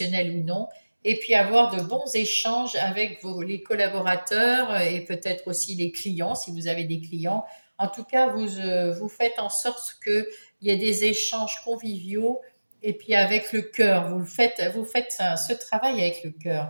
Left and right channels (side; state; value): both; inverted; correlation -1.00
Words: ou non, et puis avoir de bons échanges avec les collaborateurs et peut-être aussi les clients, si vous avez des clients. En tout cas, vous faites en sorte qu'il y ait des échanges conviviaux et puis avec le cœur. Vous faites ce travail avec le